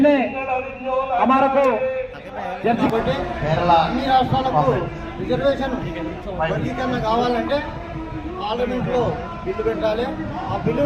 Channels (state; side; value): identical; both; correlation 1.00